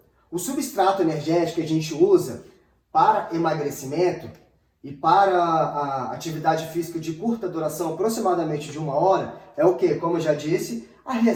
o substrato energético que a gente usa para emagrecimento e para a atividade física de curta duração, aproximadamente de 1 hora, é o que? Como eu já disse, a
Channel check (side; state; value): both; identical; correlation 1.00